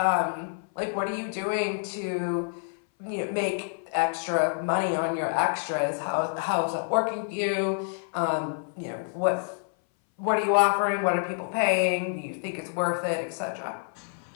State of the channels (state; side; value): silent; right; 60 dB below the other